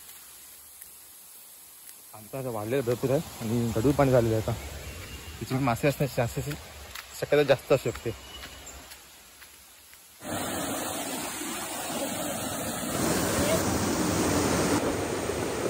आमचा आता वाढलेलं भरपूर आहे आणि गढूळ पाणी झालेलं आहे. आता तिथे मासे असण्याची चान्सेस शक्यता जास्त असू शकते.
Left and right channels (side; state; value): both; identical; correlation 1.00